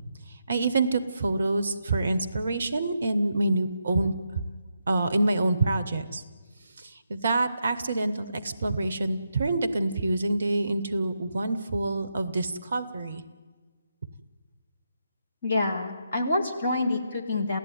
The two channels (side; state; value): both; inverted; correlation -0.82